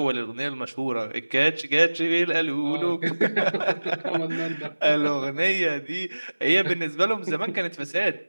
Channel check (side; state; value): both; inverted; correlation -1.00